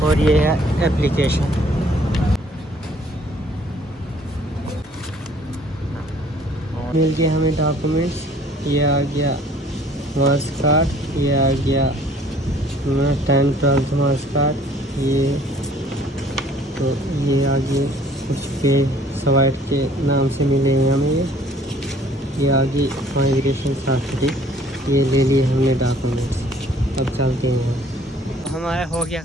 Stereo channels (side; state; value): both; normal; correlation 0.57